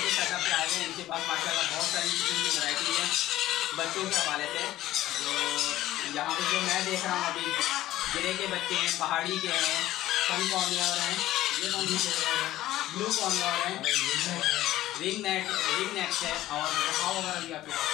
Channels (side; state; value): right; quieter; 14.8 dB